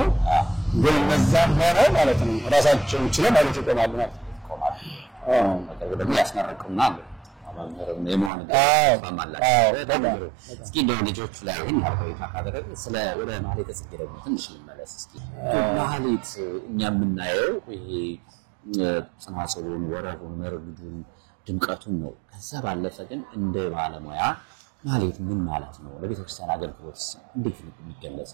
ግን እነዛም ሆነ ማለት ነው ራሳቸውን ችለው ማለት ይቆማሉ ማለት ነው። ደግሞ ያስመረቁና አማምረው የማን እስኪ እንደው ልጆቹ ላይ ይሄን አርባዕቱ ካደረገ ስለ ወደ ማህሌተ ጽጌ ደግሞ ትንሽ እንመለስ እስኪ። ማህሌት እኛ የምናየው ይሄ ጽናጽሉን፣ ወረቡን፣ መርጉዱን፣ ድምቀቱን ነው። ከዛ ባለፈ ግን እንደ ባለሙያ ማህሌት ምን ማለት ነው? ለቤተክርስቲያን አገልግሎት እንዴት ነው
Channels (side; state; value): left; drops out; at 8.3 s